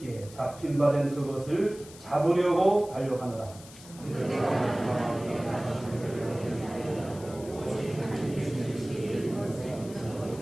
잡힌 바 된 그것을 잡으려고 달려가노라.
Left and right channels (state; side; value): noise; left; hiss, 19 dB below the sound